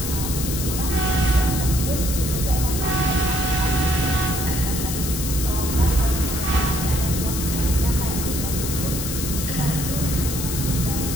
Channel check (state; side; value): noise; left; hiss, 5 dB below the sound